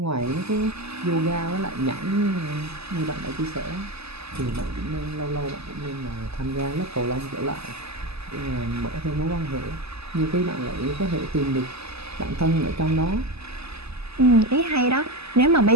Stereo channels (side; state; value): left; late; 0.79 ms